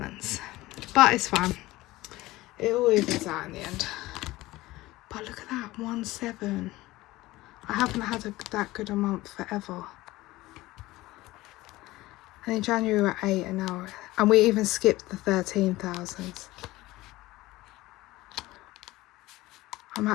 But it's fine, it all evens out in the end. But look at that, 1,700. I haven't had that good a month forever. And in January we were at 8 an hour, and we even skipped the 13,000s. I'm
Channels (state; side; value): quieter; right; 18.4 dB